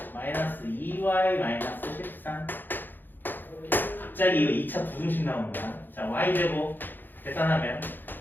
마이너스 2y 마이너스 13. 갑자기 이거 2차 부등식 나오는 거야. 자, y제곱 계산하면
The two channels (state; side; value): late; right; 0.091 ms